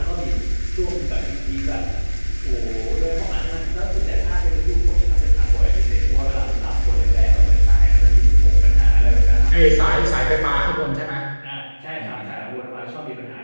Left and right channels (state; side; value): inverted; both; correlation -1.00